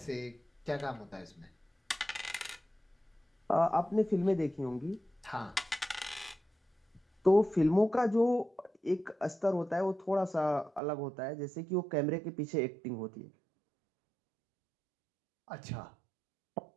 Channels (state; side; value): drops out; left; at 10.8 s